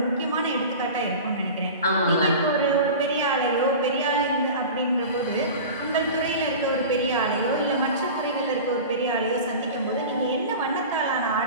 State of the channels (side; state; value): both; inverted; correlation -0.33